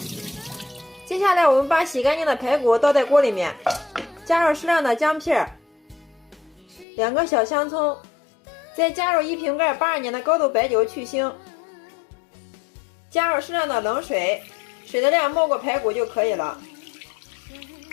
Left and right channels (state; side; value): drops out; right; at 6.9 s